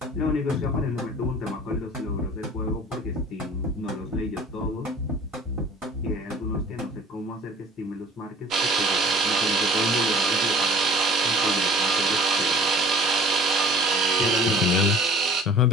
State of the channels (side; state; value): both; normal; correlation 0.46